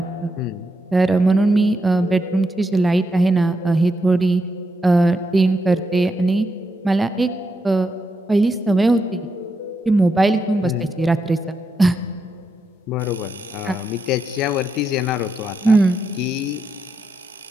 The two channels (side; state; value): both; normal; correlation 0.83